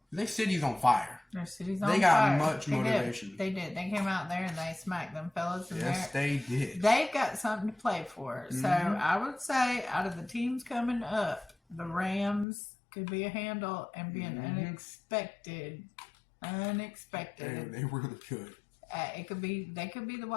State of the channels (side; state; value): right; drops out; at 12.5 s